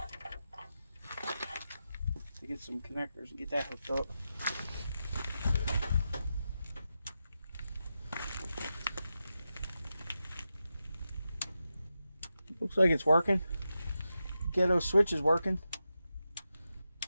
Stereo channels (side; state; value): both; inverted; correlation -0.89